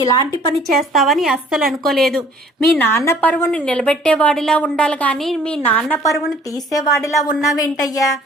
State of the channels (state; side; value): normal; both; correlation 0.56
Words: ఇలాంటి పని చేస్తావని అస్సలు అనుకోలేదు. మీ నాన్న పరువుని నిలబెట్టేవాడిలా ఉండాలి కానీ మీ నాన్న పరువుని తీసేవాడిలా ఉన్నావేంటయ్యా?